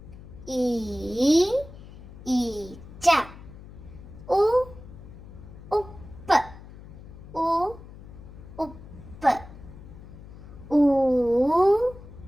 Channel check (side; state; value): left; noise; hum, 17 dB below the sound